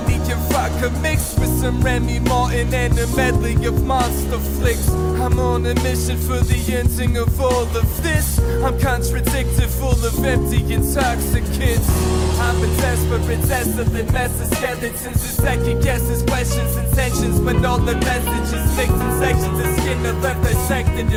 and vodka mixed with some Remy Martin and a medley of monster flicks. I'm on a mission for the ending of all of this. I'm contradicted, full of empty intoxicants. I'm a desperate, desolate mess of skeletons and second guesses, questions, intentions, but all the messages mixed in sections of skin are left dissected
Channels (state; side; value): identical; both; correlation 1.00